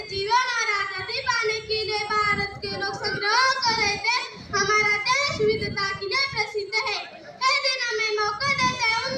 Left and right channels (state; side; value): identical; both; correlation 1.00